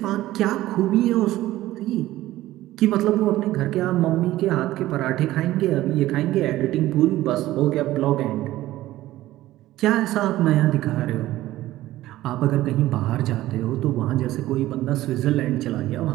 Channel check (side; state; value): left; quieter; 15.6 dB